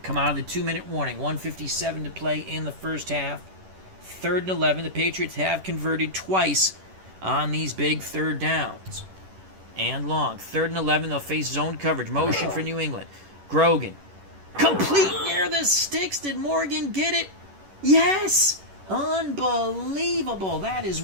Come out of the 2-minute warning. 1:57 to play in the first half. 3rd and 11. The Patriots have converted twice on these big third downs. And long. 3rd and 11. They'll face zone coverage. Motion for New England. Grogan. Complete near the sticks. Did Morgan get it? Yes! Unbelievable. That is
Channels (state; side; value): late; left; 11 ms